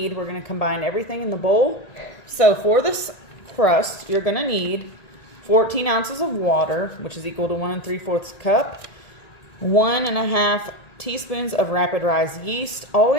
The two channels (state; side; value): late; right; 1.9 ms